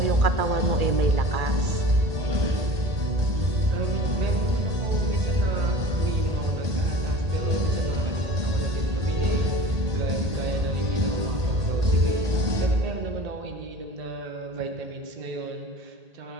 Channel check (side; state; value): left; late; 1.8 ms